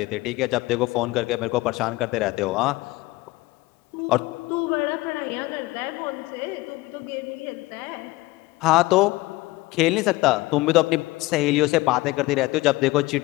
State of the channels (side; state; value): right; quieter; 20.1 dB